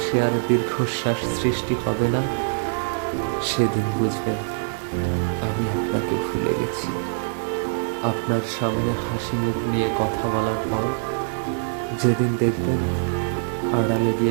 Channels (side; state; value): left; silent; digital silence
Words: আর দীর্ঘশ্বাস সৃষ্টি হবে না, সেদিন বুঝবেন আমি আপনাকে ভুলে গেছি। আপনার সামনে হাসি মুখ নিয়ে কথা বলার পর যেদিন দেখবেন আড়ালে